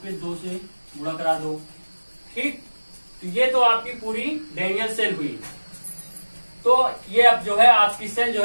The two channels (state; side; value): inverted; both; correlation -1.00